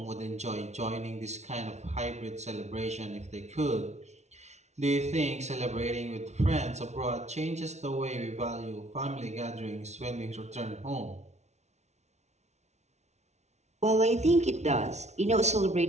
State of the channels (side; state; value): left; late; 0.32 ms